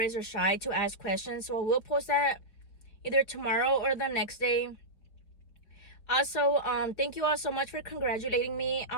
or shy to ask questions. So I will post that either tomorrow or the next day. Also, thank you all so much for congratulating me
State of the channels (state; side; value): late; right; 5.1 ms